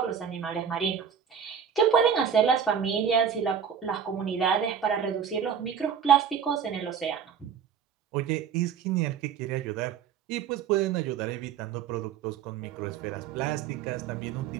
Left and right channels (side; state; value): left; quieter; 7.5 dB